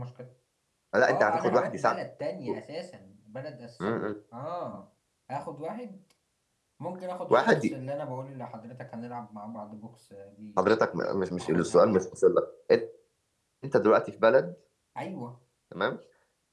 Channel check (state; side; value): identical; both; correlation 1.00